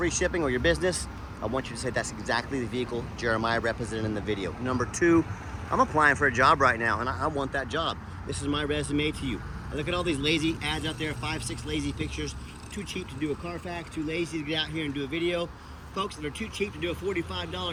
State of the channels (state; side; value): identical; both; correlation 1.00